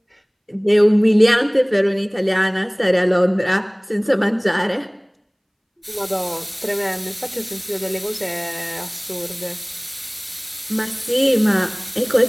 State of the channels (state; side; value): identical; both; correlation 1.00